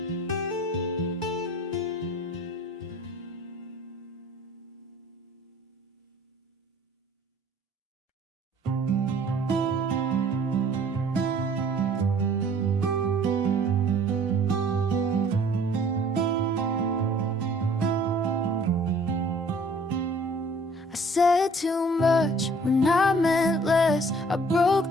Said too much when I meant less. I broke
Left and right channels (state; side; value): normal; both; correlation 0.54